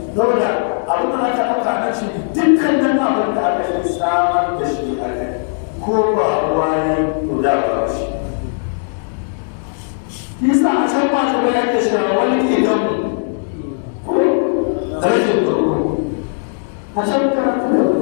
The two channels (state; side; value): silent; right; 68 dB below the other